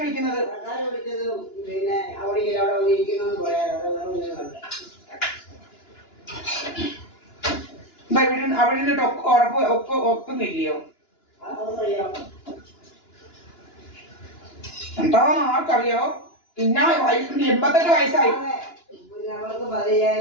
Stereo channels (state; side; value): late; right; 2.9 ms